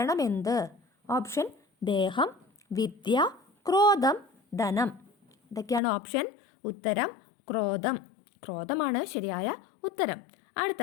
എന്ത്? ഓപ്ഷൻ ദേഹം, വിദ്യ, ക്രോധം, ധനം. ഇതൊക്കെയാണ് ഓപ്ഷൻ. ഉത്തരം ക്രോധമാണ് ശരിയായ ഉത്തരം.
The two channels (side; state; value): right; drops out; at 5.8 s